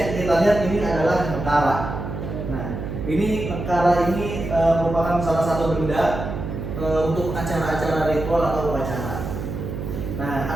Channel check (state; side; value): noise; right; hum, 6 dB below the sound